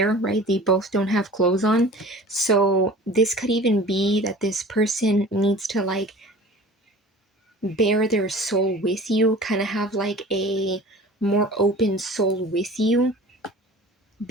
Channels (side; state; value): both; normal; correlation 0.43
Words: right? They both don't have clothes on. So this could even be that this person needs to like bare their soul with you, kind of have like a more open soul with you,